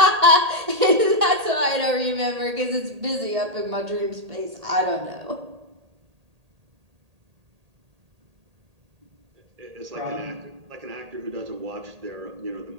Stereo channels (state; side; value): late; left; 1.8 ms